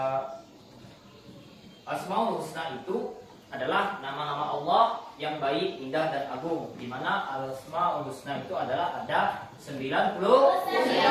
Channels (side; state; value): both; identical; correlation 1.00